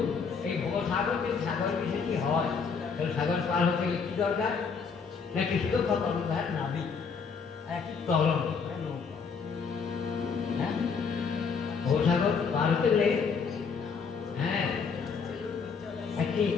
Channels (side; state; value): right; quieter; 5.7 dB